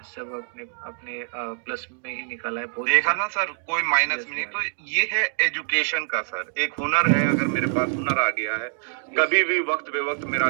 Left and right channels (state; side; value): silent; left; digital silence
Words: सब अपने अपने प्लस में ही निकाला है। बहुत देखा अच्छा। ना सर, कोई माइनस में नहीं। तो ये है एजुकेशन का सर, एक हुनर है। अगर मेरे पास हुनर आ गया है, कभी भी वक्त बेवक्त मेरा